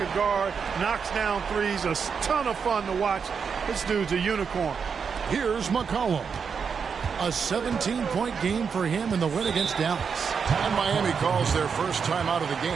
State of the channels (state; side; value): quieter; left; 6.2 dB